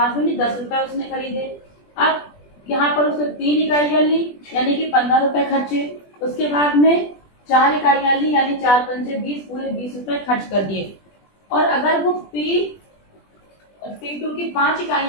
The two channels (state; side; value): late; right; 20 ms